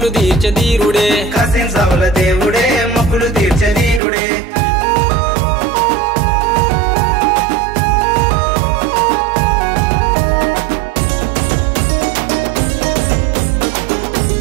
తీర్చే ధీరుడే కాసిం సావుల దేవుడే మొక్కులు తీర్చే దీనుడే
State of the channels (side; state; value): left; drops out; at 4.0 s